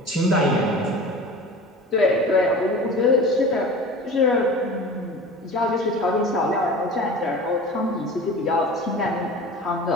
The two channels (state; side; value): normal; both; correlation 0.36